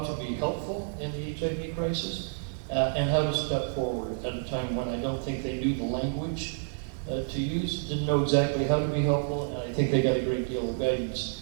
to be helpful in the HIV crisis and how to step forward at a time when I don't think they knew the language to use, didn't know exactly how to be helpful, and I think they got a great deal of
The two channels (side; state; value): left; silent; 58 dB below the other